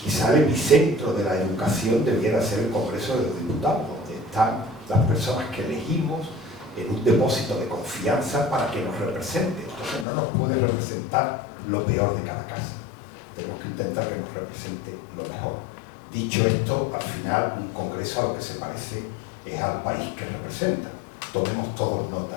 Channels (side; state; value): right; drops out; at 10.1 s